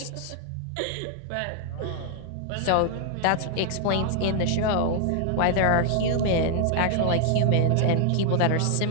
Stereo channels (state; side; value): different; both; correlation 0.00